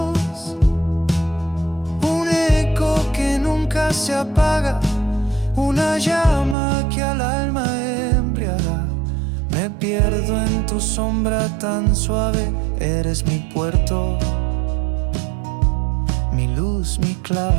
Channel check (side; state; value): left; drops out; at 6.6 s